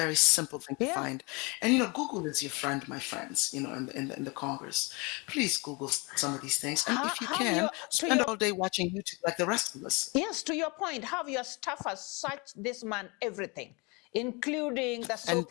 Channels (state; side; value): quieter; right; 28.5 dB